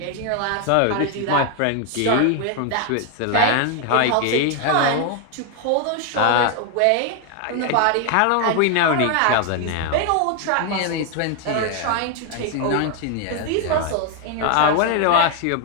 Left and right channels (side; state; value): both; different; correlation 0.01